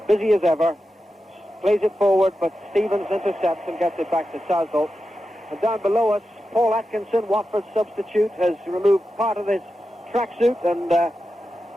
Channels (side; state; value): both; normal; correlation 0.90